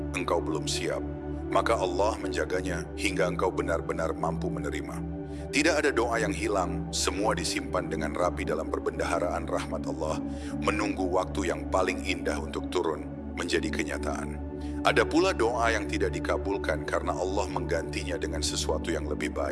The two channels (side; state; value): both; identical; correlation 1.00